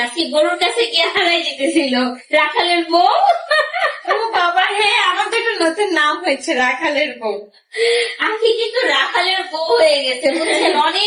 আজকে গরুর কাছে গিয়ে হারাই যেতেছিল রাখালের বউ। ও বাবা, হ্যাঁ, আমার তো একটা নতুন নাম হয়েছে, রাখালের বউ। আখি কিন্তু রাখালের বউ হয়ে গেছে, বুঝছেন?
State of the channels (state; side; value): identical; both; correlation 1.00